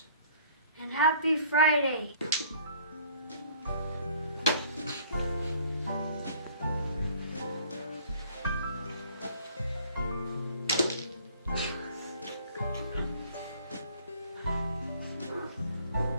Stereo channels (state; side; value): inverted; both; correlation -0.55